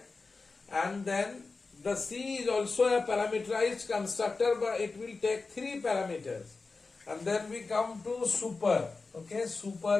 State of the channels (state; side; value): quieter; right; 4.0 dB